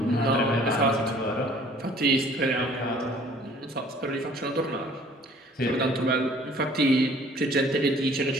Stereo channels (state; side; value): normal; both; correlation 0.54